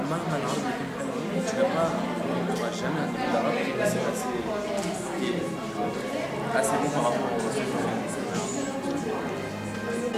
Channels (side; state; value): both; identical; correlation 1.00